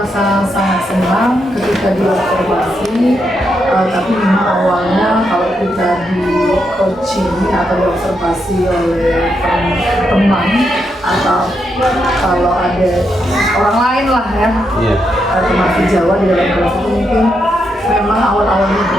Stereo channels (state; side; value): normal; both; correlation 0.81